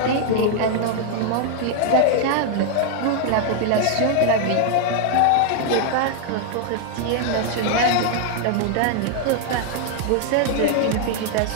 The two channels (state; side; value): different; both; correlation 0.00